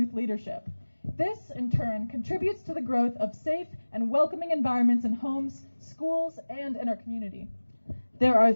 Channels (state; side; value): inverted; both; correlation -1.00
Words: leadership. This, in turn, contributes to the growth of safe and welcoming environments in homes, schools, and in our community. There are